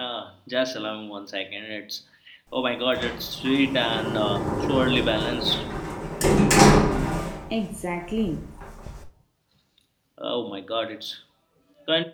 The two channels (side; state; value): both; identical; correlation 1.00